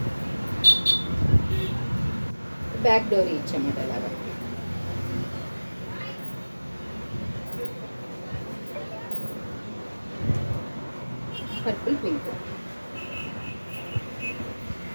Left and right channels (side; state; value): both; inverted; correlation -1.00